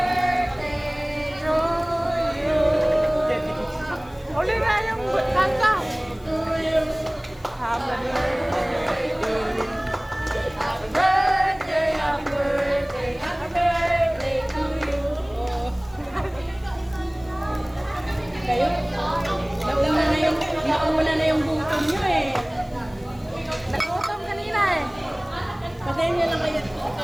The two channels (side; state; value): left; noise; hiss, 28 dB below the sound